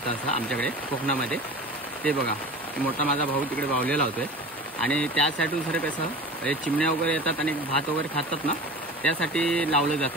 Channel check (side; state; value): both; normal; correlation 0.36